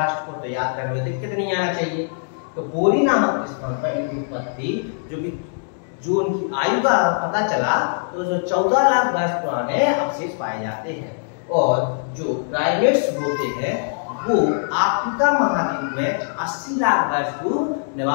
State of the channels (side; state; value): right; silent; digital silence